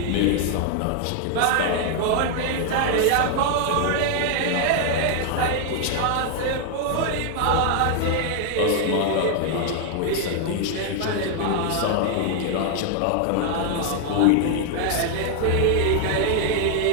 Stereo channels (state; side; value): different; both; correlation 0.00